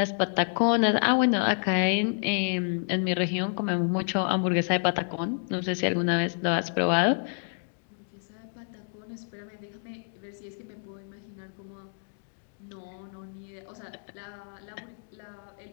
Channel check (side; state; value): right; silent; 59 dB below the other